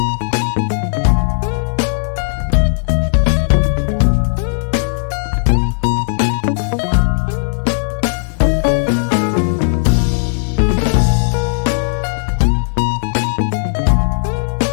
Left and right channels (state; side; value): silent; right; digital silence